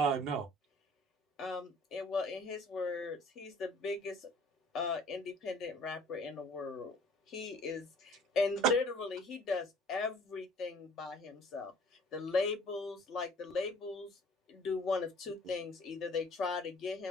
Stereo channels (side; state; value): both; normal; correlation 0.52